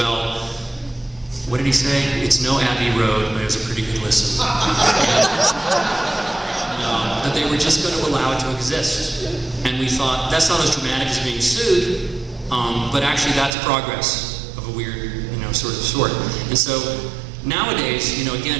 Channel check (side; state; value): left; drops out; at 13.6 s